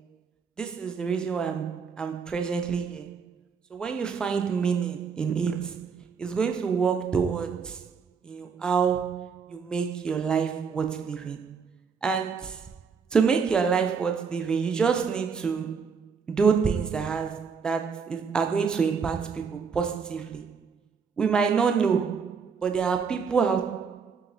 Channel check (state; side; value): quieter; left; 5.9 dB